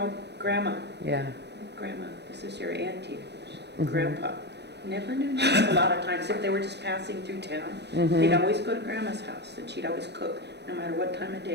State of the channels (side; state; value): left; late; 0.50 ms